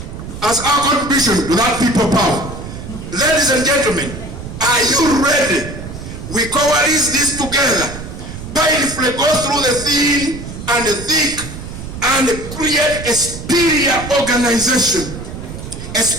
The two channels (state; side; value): noise; right; rumble, 10 dB below the sound